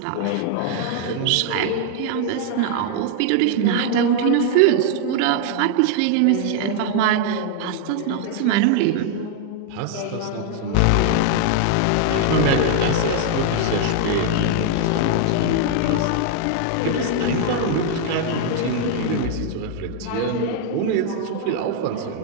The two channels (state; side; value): different; both; correlation 0.00